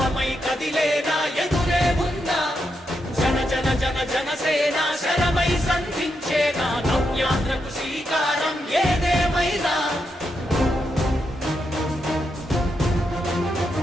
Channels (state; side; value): normal; both; correlation 0.83